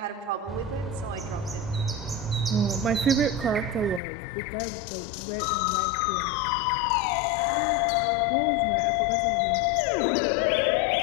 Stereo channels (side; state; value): right; drops out; at 4.0 s